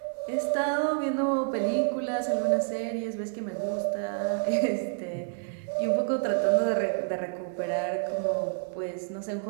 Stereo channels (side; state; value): left; silent; digital silence